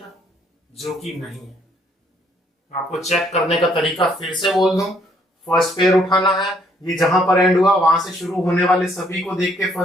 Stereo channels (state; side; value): normal; both; correlation 0.67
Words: जो कि नहीं है। आपको चेक करने का तरीका फिर से बोल दूं, फर्स्ट पेयर उठाना है, ये जहां पर एंड हुआ वहां से शुरू होने वाले सभी को देख के